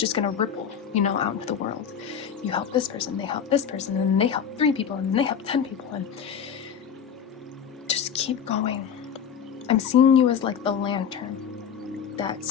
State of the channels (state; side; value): quieter; right; 7.7 dB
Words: going to ripple, you know, out into the world. You help this person, they help this person, and they help 3 people, and they help 10 people, and just keep going. I'm seeing you as like the lantern that